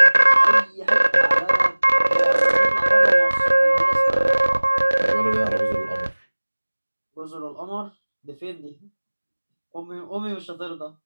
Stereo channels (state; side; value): inverted; both; correlation -1.00